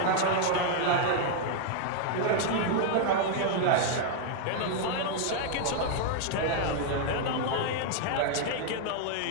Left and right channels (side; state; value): both; different; correlation 0.00